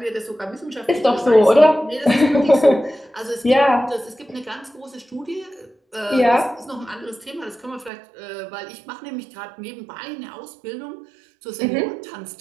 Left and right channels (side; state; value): left; drops out; at 7.9 s